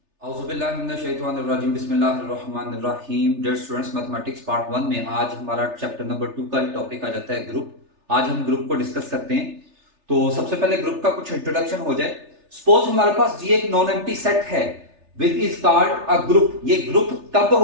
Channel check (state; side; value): late; left; 3.3 ms